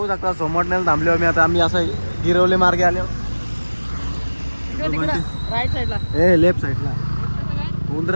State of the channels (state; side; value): inverted; both; correlation -1.00